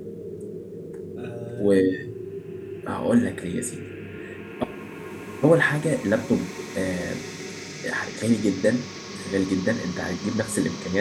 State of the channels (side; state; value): both; identical; correlation 1.00